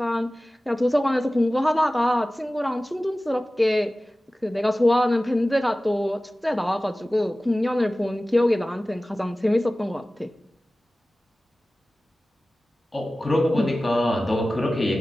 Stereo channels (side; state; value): both; normal; correlation 0.97